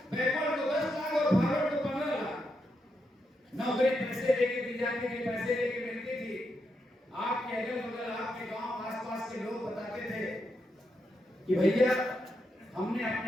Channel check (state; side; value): normal; both; correlation 0.83